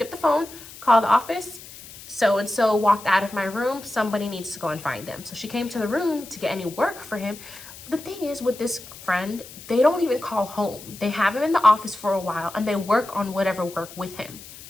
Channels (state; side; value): noise; left; hiss, 17 dB below the sound